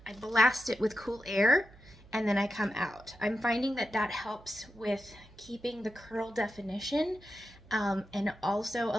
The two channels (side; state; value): right; noise; hum, 22 dB below the sound